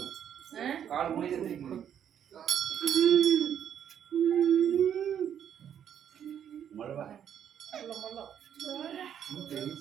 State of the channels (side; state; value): left; quieter; 9.2 dB